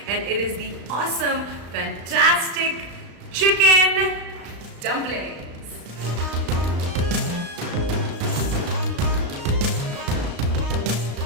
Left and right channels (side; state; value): left; late; 35 ms